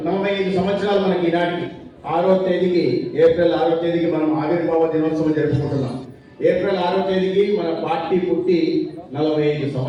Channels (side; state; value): both; identical; correlation 1.00